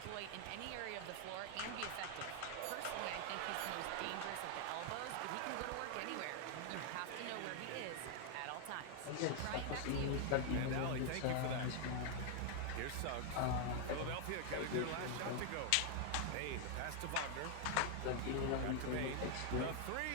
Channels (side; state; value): both; different; correlation 0.00